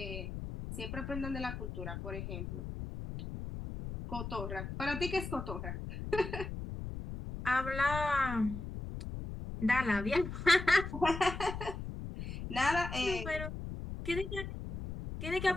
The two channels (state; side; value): noise; left; rumble, 7 dB below the sound